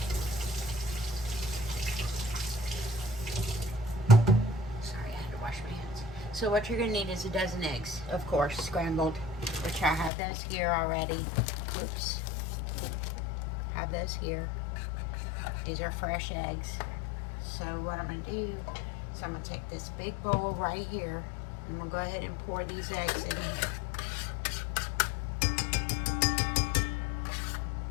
Sorry, I had to wash my hands. So what you're gonna need is a dozen eggs, of course, scrambled, which I have those here already. Oops. Have those here. These are fresh eggs. So what I'm gonna do is I'm gonna take this big bowl right here, and I'm gonna go ahead and pour these eggs in here.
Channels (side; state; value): right; drops out; at 10.1 s